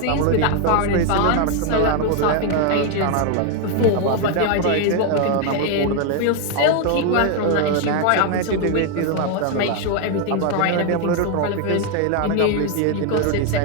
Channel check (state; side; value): different; both; correlation 0.01